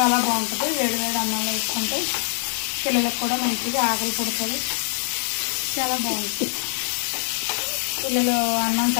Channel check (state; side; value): silent; right; 63 dB below the other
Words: బాగుంటుంది. వేడి అన్నంలో వేసుకుంటే పిల్లలకు కూడా మంచిగా ఆకలి పుడుతుంది. చాలా బాగుంటుంది. పిల్లలు అన్నం